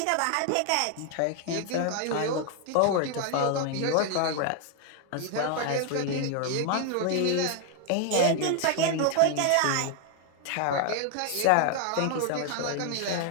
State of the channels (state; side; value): different; both; correlation 0.00